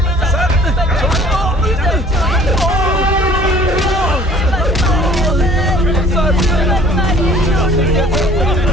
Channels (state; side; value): normal; both; correlation 0.52